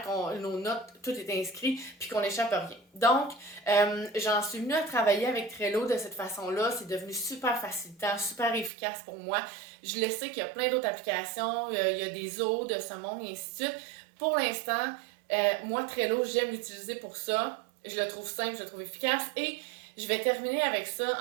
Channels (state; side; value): drops out; left; at 8.7 s